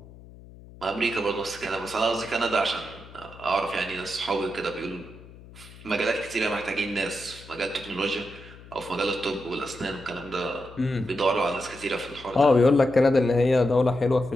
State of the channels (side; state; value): left; noise; hum, 19 dB below the sound